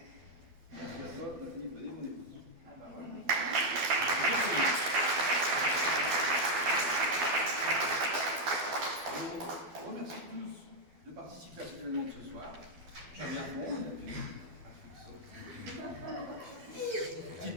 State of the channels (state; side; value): late; left; 12 ms